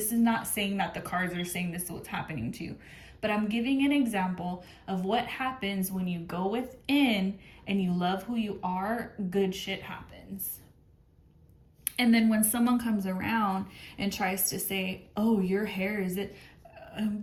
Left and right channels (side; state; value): both; identical; correlation 1.00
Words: not saying that the cards are saying this is what's happening to you. But I'm giving an example of what happens when you go within and you love who you are. Good shit happens. And then when someone comes around and tries to say, oh, your hair is it,